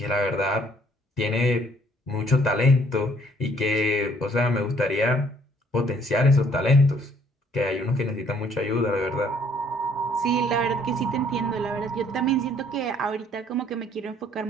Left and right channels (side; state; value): both; normal; correlation 0.62